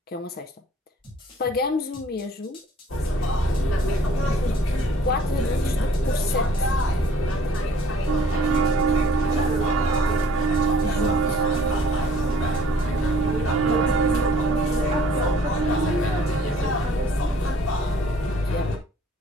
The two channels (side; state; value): both; normal; correlation 0.56